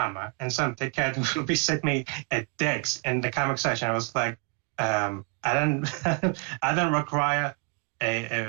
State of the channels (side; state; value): left; quieter; 34.1 dB